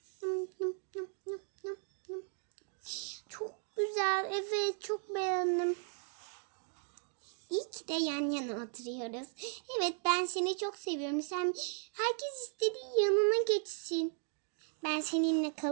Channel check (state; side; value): silent; left; 53 dB below the other